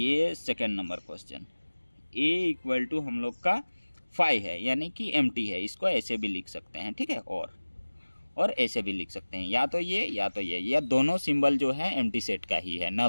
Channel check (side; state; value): both; inverted; correlation -1.00